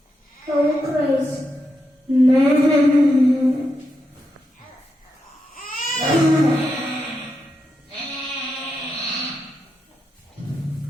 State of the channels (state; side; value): normal; both; correlation 0.85